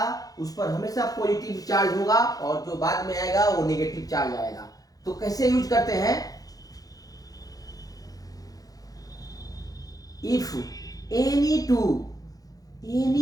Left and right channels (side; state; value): right; late; 0.18 ms